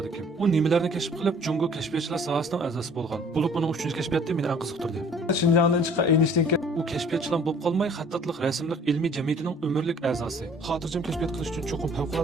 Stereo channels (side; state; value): both; normal; correlation 0.53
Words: kim? U nimalarni kashf qilib, Jungo kashfiyotchilar sohasining a'zosi bo'lgan. Bo'lib uning 3-kashfiyoti meni eng qiziqtirdi. Shinjongdan chiqqan Eynshteynga u kashfiyotchilar bo'lib qolmay, xattatlik, rasmlik ilmiy jamiyatining umrlik a'zosi. Xotirjam kashfiyot qilish uchun cho'qim